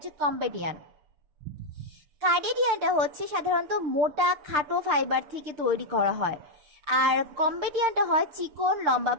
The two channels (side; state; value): left; late; 6.7 ms